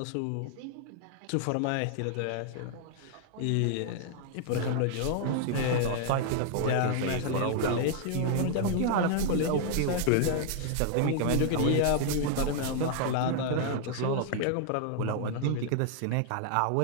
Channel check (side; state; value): both; different; correlation 0.00